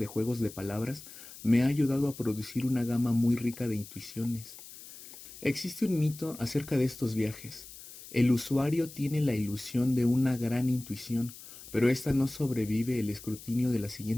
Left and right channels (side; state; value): left; noise; hiss, 16 dB below the sound